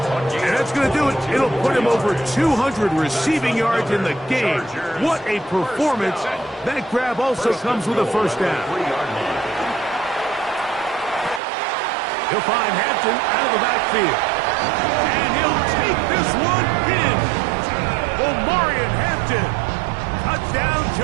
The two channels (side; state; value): left; drops out; at 11.4 s